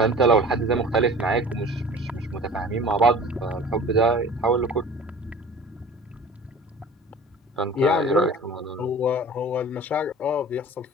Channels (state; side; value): normal; both; correlation 0.42